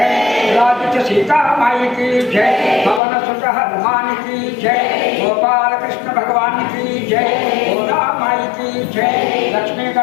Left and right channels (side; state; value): right; drops out; at 3.0 s